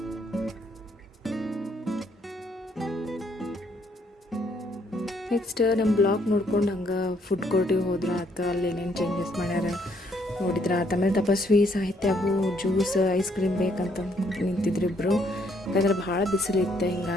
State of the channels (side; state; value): both; normal; correlation 0.69